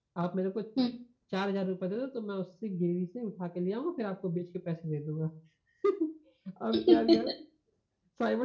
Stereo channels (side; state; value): both; identical; correlation 1.00